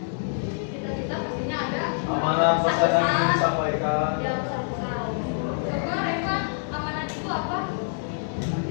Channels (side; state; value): right; silent; digital silence